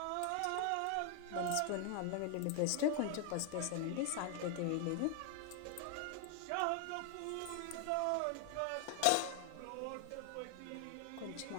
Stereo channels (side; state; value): both; different; correlation 0.00